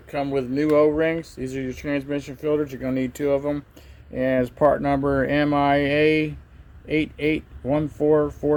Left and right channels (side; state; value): both; identical; correlation 1.00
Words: come with new O-rings. These are your transmission filters. You're going to need 2 of them. And as part number MIA